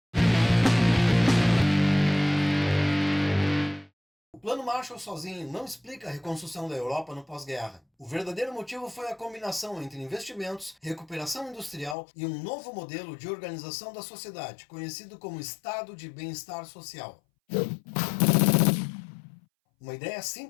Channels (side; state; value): right; drops out; at 12.0 s